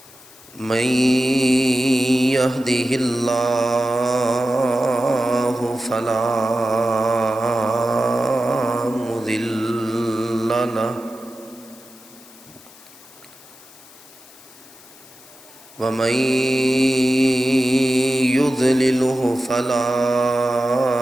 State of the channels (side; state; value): left; noise; hiss, 22 dB below the sound